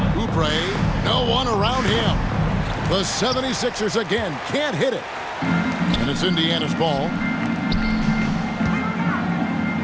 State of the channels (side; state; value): both; identical; correlation 1.00